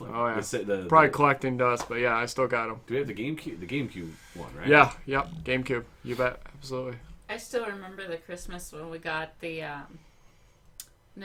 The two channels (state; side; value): identical; both; correlation 1.00